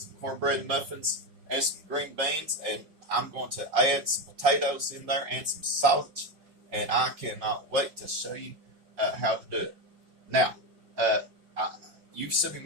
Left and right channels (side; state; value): left; late; 5.5 ms